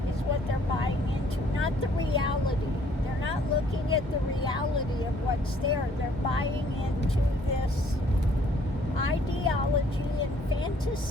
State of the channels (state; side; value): normal; both; correlation 0.61